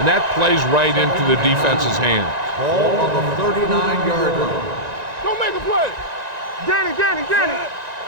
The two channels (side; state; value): left; late; 1.9 ms